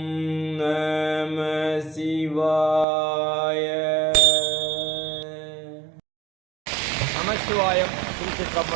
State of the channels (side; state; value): left; drops out; at 2.9 s